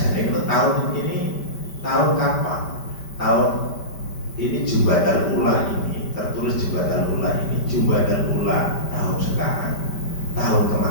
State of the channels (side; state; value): right; late; 5.1 ms